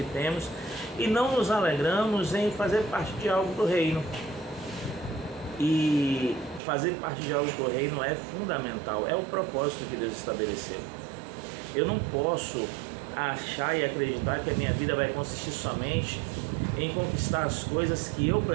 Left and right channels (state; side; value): drops out; left; at 6.6 s